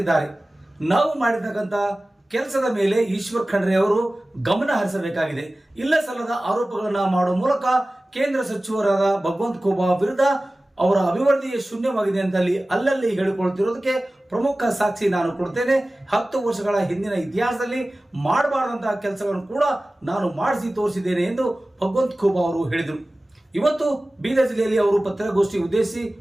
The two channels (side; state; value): both; normal; correlation 0.97